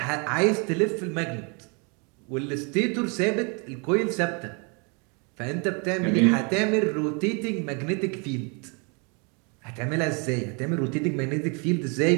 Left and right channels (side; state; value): left; quieter; 34.0 dB